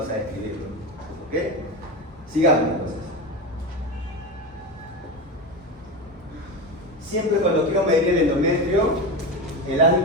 a escribirlo, ¿ok? Sigamos entonces. Siempre cuando quiero medir el endometrio, el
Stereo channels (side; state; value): both; normal; correlation 0.21